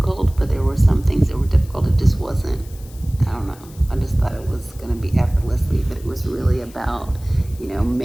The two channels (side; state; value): left; noise; hiss, 23 dB below the sound